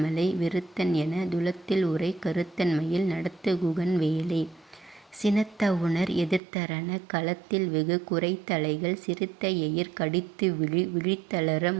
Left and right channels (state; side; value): drops out; left; at 6.4 s